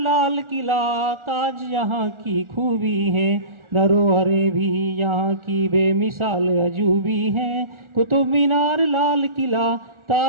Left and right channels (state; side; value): late; left; 1.4 ms